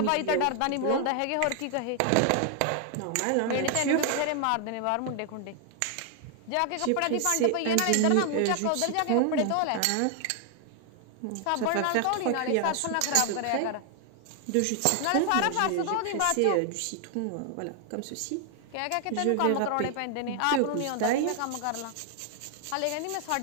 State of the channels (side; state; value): both; different; correlation 0.00